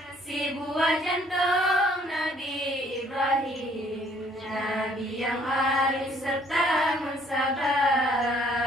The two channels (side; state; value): both; normal; correlation 0.62